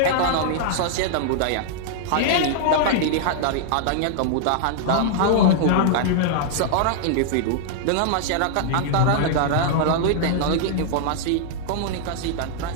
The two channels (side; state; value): both; different; correlation -0.01